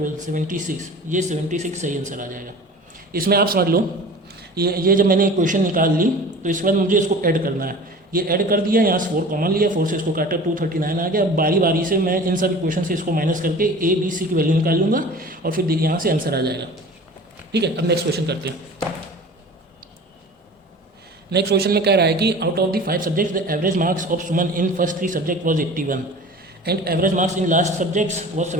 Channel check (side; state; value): both; normal; correlation 0.40